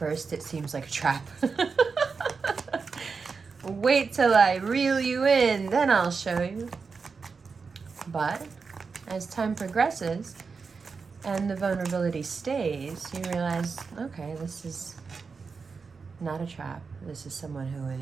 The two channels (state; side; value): quieter; left; 5.0 dB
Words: it seems like a trap. Wait till I reel you in, then I'll show you. But as time progresses and the vulnerability stays, you realize, okay, this is not a trap. This is someone who